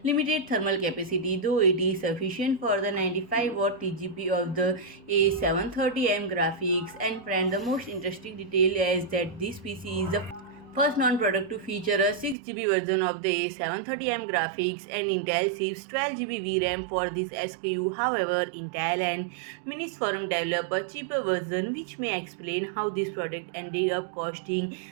limited thermal capacity, though it is sufficient for the 95-watt TGP of the A730M graphics. And friend, the most interesting detail is that this PC is the first non-product to feature a 6GB version of the A730M graphics, and Intel ships 12GB VRAM for this SKU. However, Intel and Minisforum develop a cheaper version, which may explain how this product ended up costing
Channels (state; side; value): drops out; left; at 12.4 s